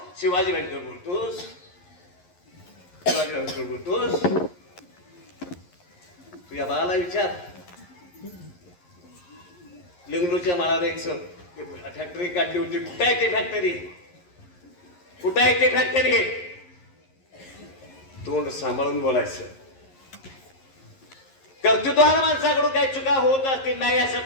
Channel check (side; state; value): right; late; 11 ms